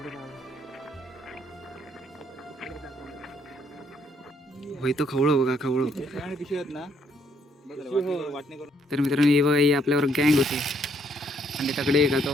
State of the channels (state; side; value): normal; both; correlation 0.69